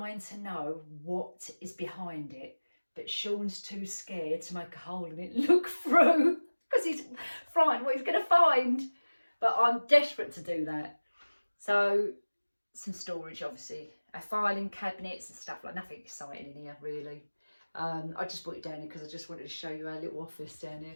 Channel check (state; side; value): inverted; both; correlation -1.00